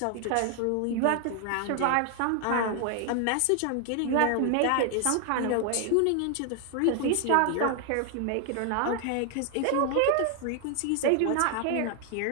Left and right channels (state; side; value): different; both; correlation 0.00